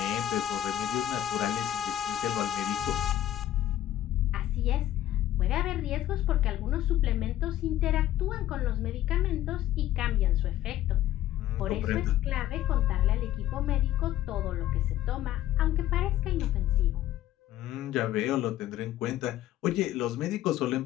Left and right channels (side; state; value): right; quieter; 12.9 dB